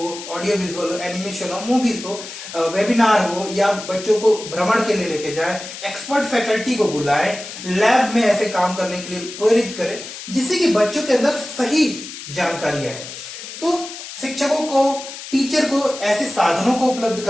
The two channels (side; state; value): left; noise; hiss, 11 dB below the sound